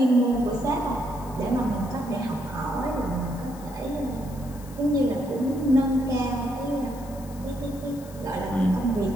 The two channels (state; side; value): noise; left; hiss, 21 dB below the sound